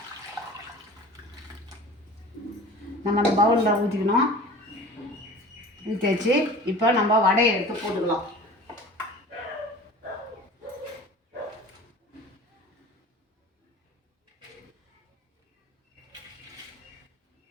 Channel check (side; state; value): both; normal; correlation 0.41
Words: நம்ம அந்த பவுலில் ஊற்றிக்கணும். ஊற்றியாச்சு. இப்போ நம்ம வடையை எடுத்து போட்டுக்கலாம்.